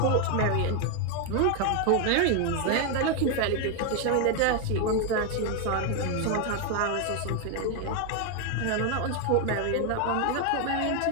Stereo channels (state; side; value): different; both; correlation 0.01